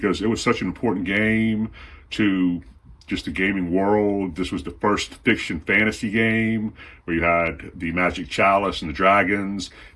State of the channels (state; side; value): identical; both; correlation 1.00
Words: it was such an important game to just the gaming world. This was the first fiction fantasy game where you had the magic chalice and the dragons,